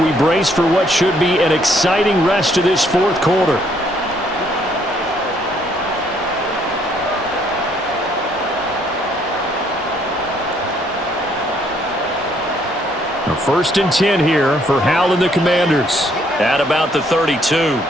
brace for what should be an exciting rest of this 4th quarter. Now 1st and 10 here for Hal and the Commanders. At about the 32.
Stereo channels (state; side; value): normal; both; correlation 0.67